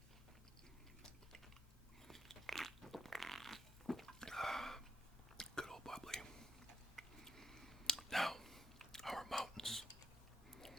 Good old bubbly. Now, our mountains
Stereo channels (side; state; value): both; normal; correlation 0.81